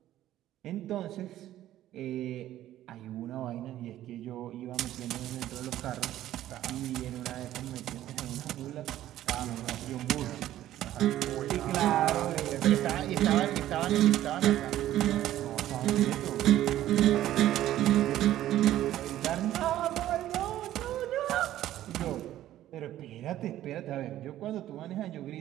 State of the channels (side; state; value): left; quieter; 13.3 dB